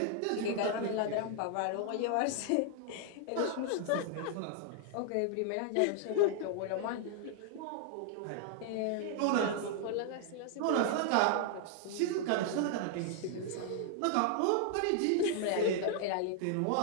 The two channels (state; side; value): different; both; correlation 0.00